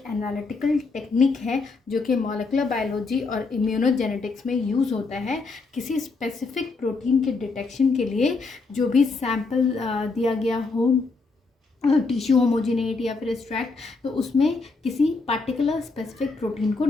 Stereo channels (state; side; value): quieter; right; 4.0 dB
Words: एनालिटिकल टेक्निक है जो कि मॉलिक्यूलर बायोलॉजी और इम्यूनोजेनेटिक्स में यूज़ होता है किसी स्पेसिफिक प्रोटीन के डिटेक्शन के लिए। जो भी सैंपल दिया गया हो, टिश्यू होमोजिनेट या फिर एक्सट्रैक्ट, तो उसमें किसी पार्टिकुलर स्पेसिफिक प्रोटीन को